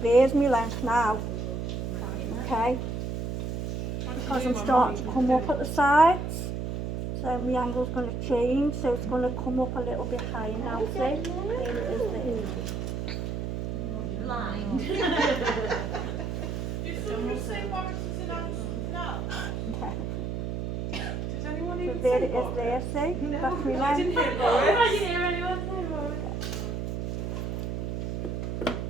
there's my length now. Okay, because I'm starting to come up at the sides, so my angle's going to change, so it's going to come up a little bit higher now, see? There it is there. So there it is there, see? That's my length.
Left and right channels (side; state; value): right; noise; hum, 3 dB below the sound